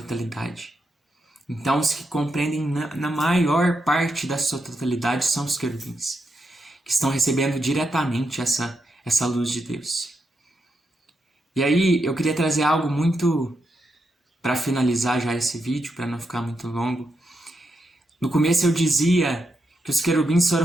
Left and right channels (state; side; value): normal; both; correlation 0.84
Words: Então, os que compreendem na maior parte da sua totalidade são os querubins, que estão recebendo diretamente essa luz de Deus. E aí, eu queria trazer algo muito, para finalizar já esse vídeo, para não ficar muito longo. No começo eu dizia que os querubins